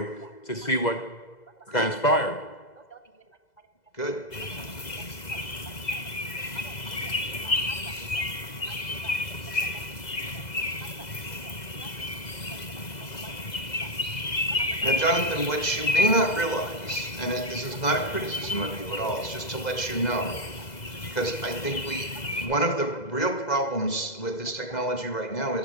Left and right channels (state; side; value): late; right; 2.0 ms